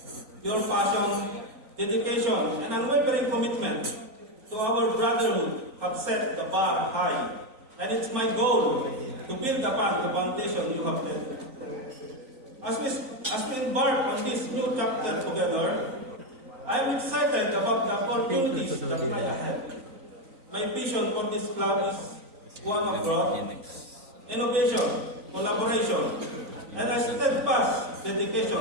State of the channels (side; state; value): left; late; 3.9 ms